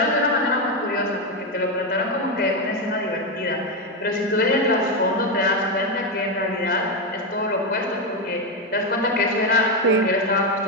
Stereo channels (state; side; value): normal; both; correlation 0.08